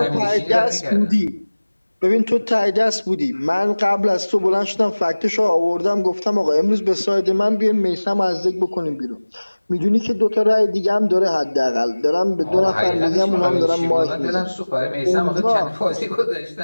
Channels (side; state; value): both; inverted; correlation -1.00